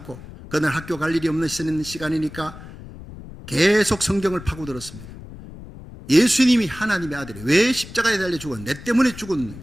그날 학교 갈 일이 없는 시간이니까 계속 성경을 파고들었습니다. 예수님이 하나님의 아들이 왜 십자가에 달려 죽어? 내 때문에 죽은.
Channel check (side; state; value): left; noise; rumble, 15 dB below the sound